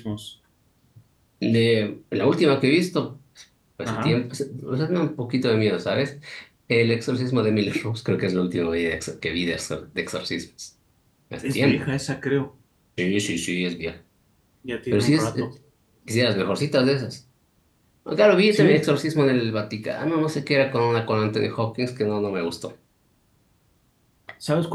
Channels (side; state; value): both; identical; correlation 1.00